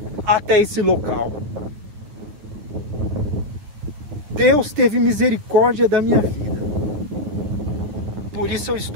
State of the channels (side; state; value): left; late; 9.7 ms